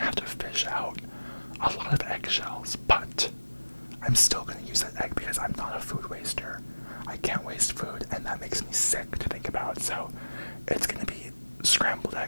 to fish out a lot of eggshells, but I'm still going to use that egg because I'm not a food waster. I can't waste food, and that makes me sick to think about, so it's going to be scrambled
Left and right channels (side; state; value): both; inverted; correlation -1.00